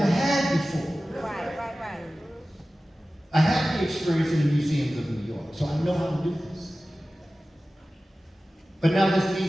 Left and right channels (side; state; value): both; normal; correlation 0.96